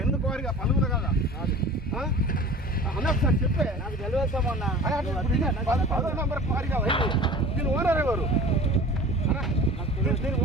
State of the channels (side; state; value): both; normal; correlation 0.40